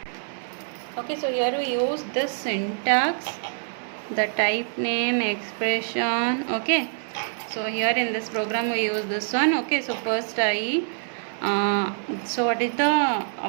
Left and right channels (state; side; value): silent; left; digital silence